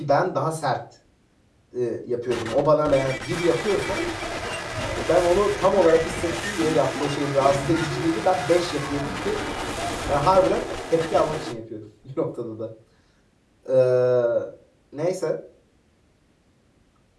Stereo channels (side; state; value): both; identical; correlation 1.00